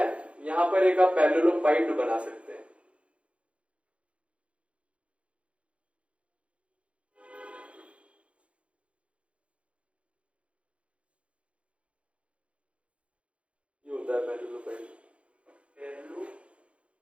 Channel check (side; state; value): left; late; 0.061 ms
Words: यहां पर एक आप पैरेललोपाइड बना सकते हैं, ये होता है पैरेललोपाइड,